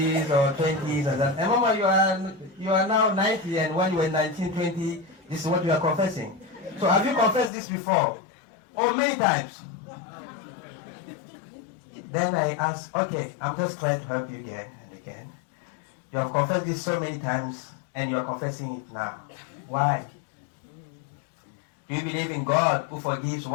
or 20s and that. And Mama, you are now 90, and when you were 19, 20, this is what you are confessing. So have you confessed this before? Oh, many times. Then I asked, okay, I'm just trying to help you again and again. You have confessed this so many times, and you are confessing it now. Why? Do you believe in God who forgives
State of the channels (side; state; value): right; drops out; at 7.5 s